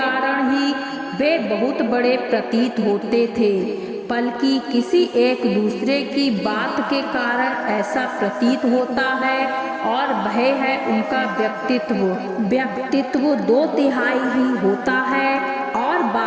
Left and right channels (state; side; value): identical; both; correlation 1.00